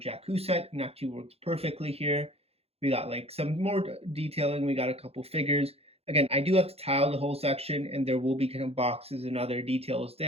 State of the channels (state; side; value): late; left; 0.29 ms